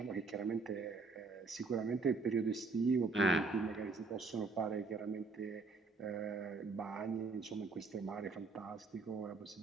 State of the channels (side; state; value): left; quieter; 4.0 dB